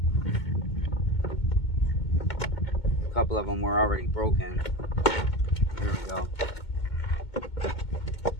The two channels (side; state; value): right; late; 2.2 ms